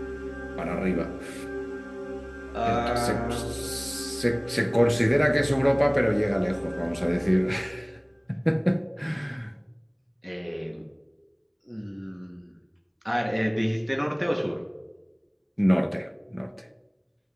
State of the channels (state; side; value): identical; both; correlation 1.00